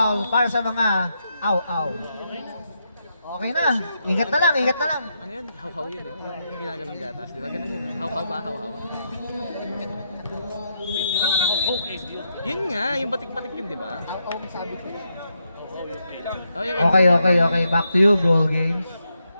para sa mga aw-aw. Okay na. Ingat na lang, ingat na lang. Ano yun? How-how yun, no? Yung ginagalang gatas. Di ba ganun yun? How-how ba? How-how? Yun nga, yung batik-batik yun, di ba? How-how sabi ko. Okay. Back to you, Brawl Games.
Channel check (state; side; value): inverted; both; correlation -0.81